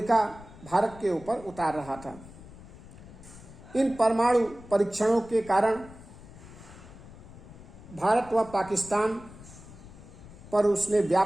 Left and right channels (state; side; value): noise; left; rumble, 18 dB below the sound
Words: भारत के ऊपर उतार रहा था। इन परमाणु परीक्षणों के कारण भारत व पाकिस्तान पर उसने